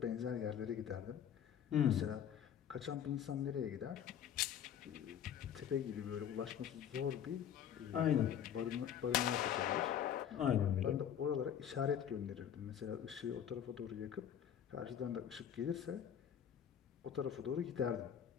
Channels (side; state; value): right; quieter; 9.2 dB